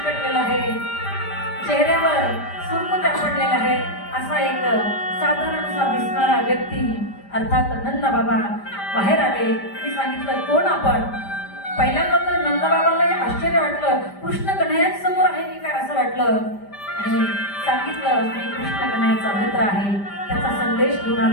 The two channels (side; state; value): right; late; 5.0 ms